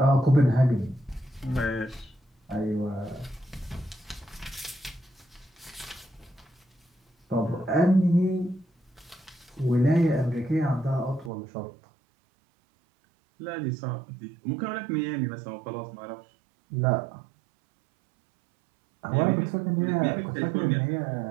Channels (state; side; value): drops out; left; at 11.3 s